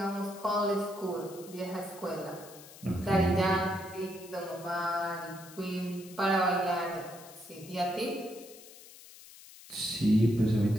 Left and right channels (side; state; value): left; noise; hiss, 19 dB below the sound